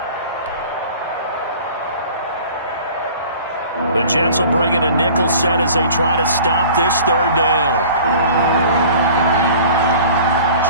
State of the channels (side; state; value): both; inverted; correlation -0.45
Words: The Jets will bring in a nickel set as they try to stop this 3rd down.